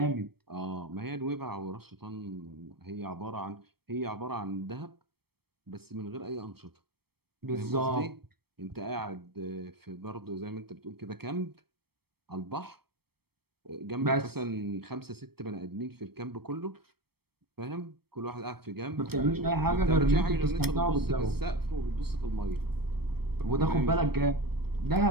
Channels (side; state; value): left; late; 0.96 ms